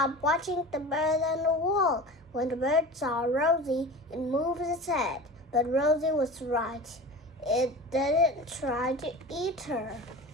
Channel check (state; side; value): normal; both; correlation 0.34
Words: watching the bird on the wall. When the bird saw Rosie, it moved its head. But Rosie was right. It didn't try to eat her.